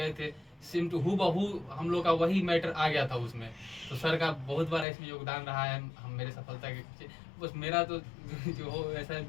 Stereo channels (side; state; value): right; drops out; at 4.9 s